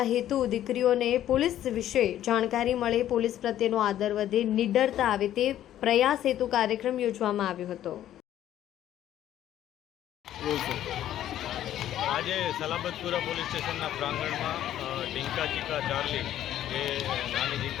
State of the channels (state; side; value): quieter; right; 12.0 dB